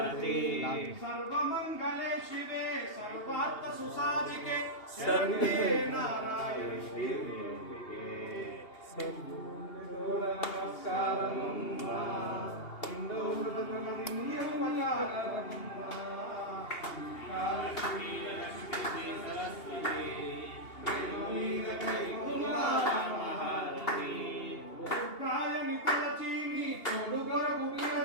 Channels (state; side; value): late; right; 2.8 ms